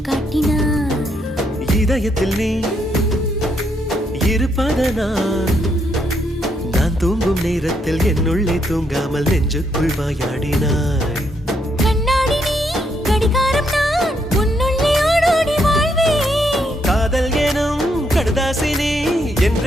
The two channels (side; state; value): both; normal; correlation 0.76